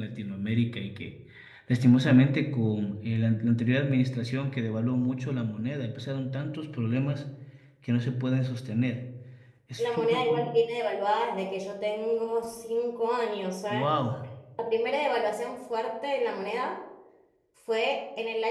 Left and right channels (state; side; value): identical; both; correlation 1.00